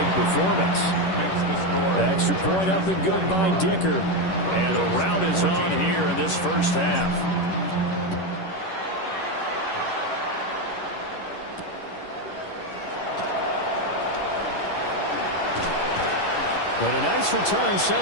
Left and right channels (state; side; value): late; right; 11 ms